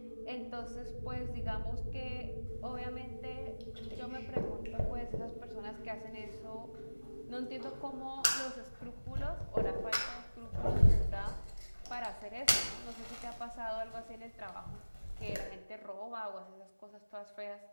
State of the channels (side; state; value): both; inverted; correlation -1.00